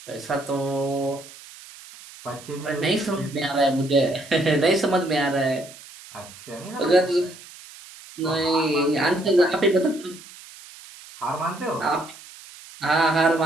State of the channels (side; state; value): right; noise; hiss, 19 dB below the sound